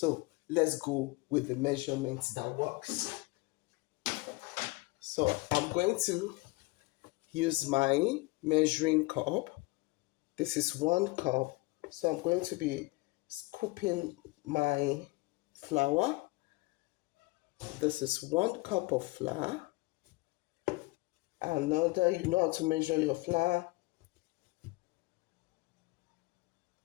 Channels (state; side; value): quieter; right; 23.5 dB